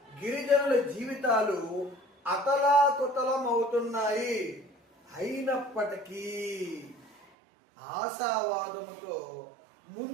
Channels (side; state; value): left; drops out; at 7.2 s